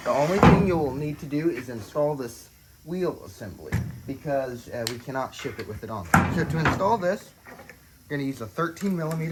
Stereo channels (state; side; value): identical; both; correlation 1.00